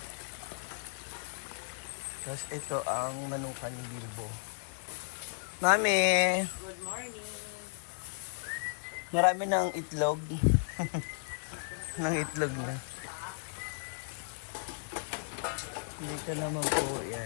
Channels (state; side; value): silent; right; 55 dB below the other